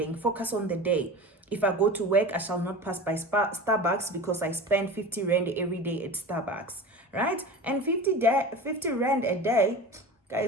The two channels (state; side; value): normal; both; correlation 0.33